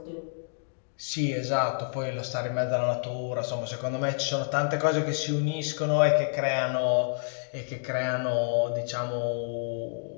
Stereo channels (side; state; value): right; silent; digital silence